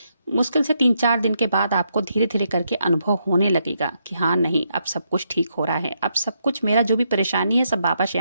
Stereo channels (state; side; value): inverted; both; correlation -0.79